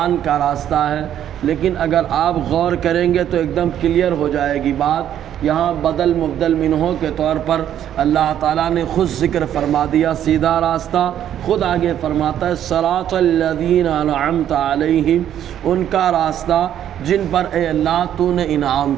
کا راستہ ہے۔ لیکن اگر آپ غور کریں گے تو ایک دم کلیئر ہو جائے گی بات۔ یہاں بدل مبدل منہوں کے طور پر اللہ تعالیٰ نے خود ذکر فرما دیا سیدھا راستہ، خود آگے فرماتا ہے صراط الذین انعمت علیہم، ان کا راستہ جن پر اے اللہ تو نے انعام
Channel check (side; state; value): left; quieter; 10.6 dB